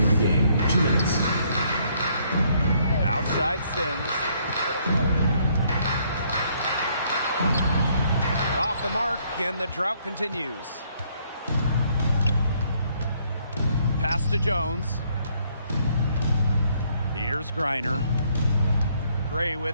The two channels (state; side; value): inverted; both; correlation -0.68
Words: in the game. 2 minutes. Outside Sims. Off the mark, and the drought continues. Pass to Jones. Here's Griner. Gray